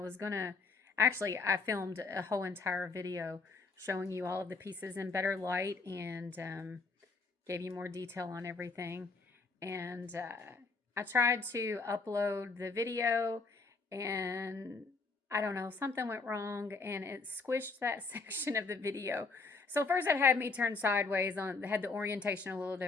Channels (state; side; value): quieter; right; 4.1 dB